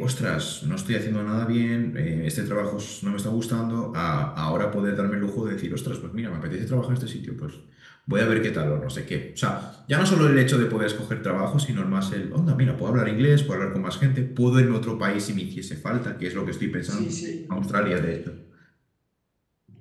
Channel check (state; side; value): identical; both; correlation 1.00